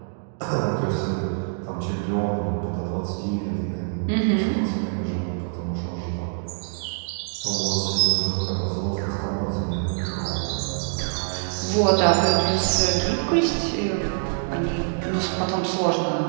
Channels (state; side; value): silent; left; 62 dB below the other